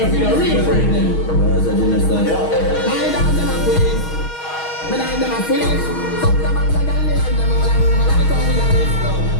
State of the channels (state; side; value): late; right; 6.3 ms